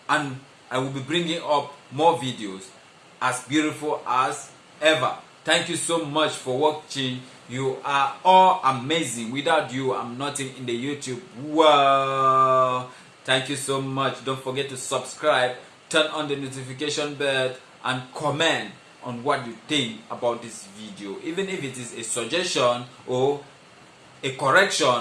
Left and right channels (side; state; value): both; identical; correlation 1.00